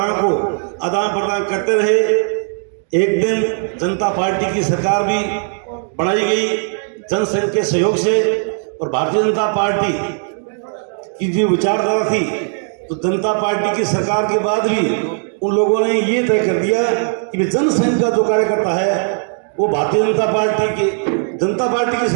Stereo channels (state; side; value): silent; left; 58 dB below the other